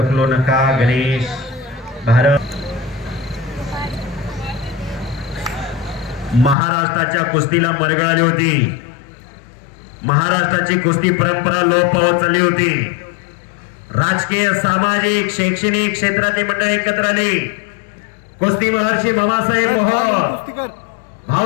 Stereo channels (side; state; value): right; drops out; at 6.6 s